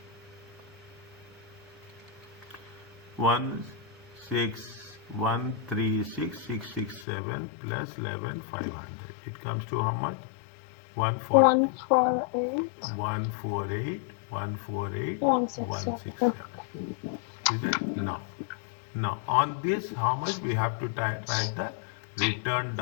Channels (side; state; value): right; drops out; at 7.1 s